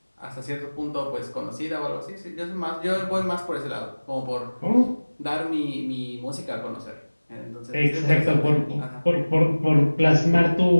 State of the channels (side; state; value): both; inverted; correlation -1.00